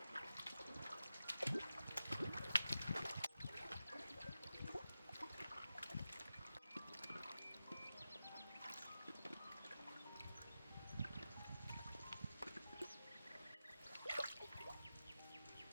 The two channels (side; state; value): both; inverted; correlation -0.91